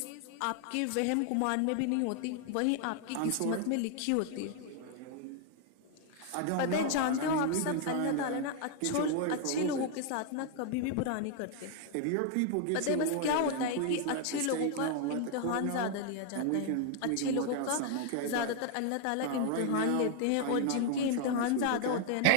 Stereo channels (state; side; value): different; both; correlation 0.00